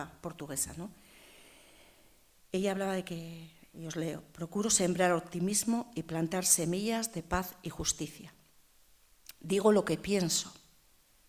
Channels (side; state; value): both; identical; correlation 1.00